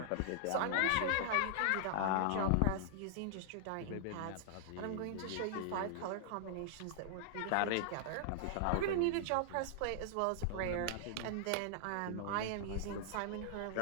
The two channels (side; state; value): both; different; correlation -0.01